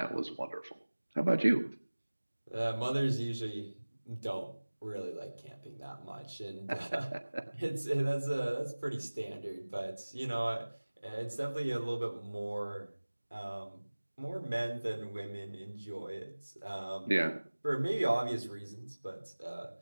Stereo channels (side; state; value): both; inverted; correlation -1.00